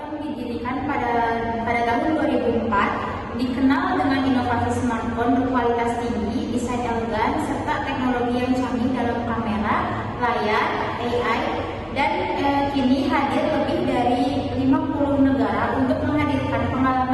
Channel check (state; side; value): identical; both; correlation 1.00